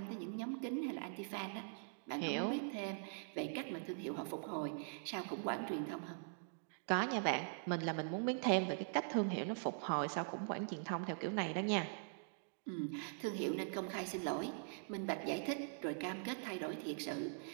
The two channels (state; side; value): silent; left; digital silence